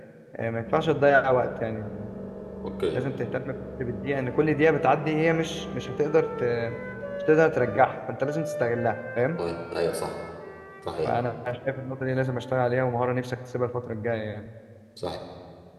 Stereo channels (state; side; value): identical; both; correlation 1.00